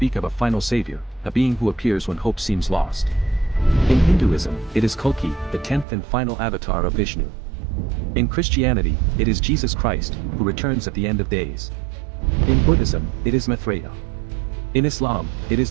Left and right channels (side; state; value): left; drops out; at 5.9 s